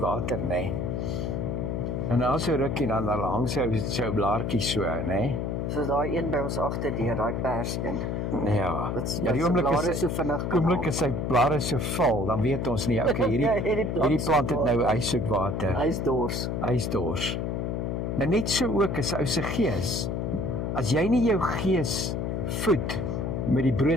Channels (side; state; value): left; noise; hum, 1 dB below the sound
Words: nê? En dan so rukkie dan hang sy blaartjie so, nê? soos daai een by ons agterdeur, daai perseen. Ja. Wat Ja, die sy oomblik blare is so vinnig kan oomblik is sy blare so vol, dan weet ons nie, okay, hierdie plant het nou hy soek water. Hy's dors. Hy's dors. Nou net so ook is ou se gees. As jy nie jou gees voed met die